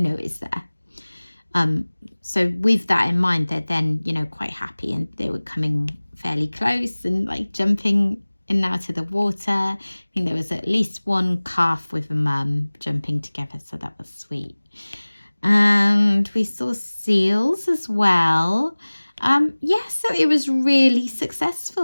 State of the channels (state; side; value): inverted; both; correlation -1.00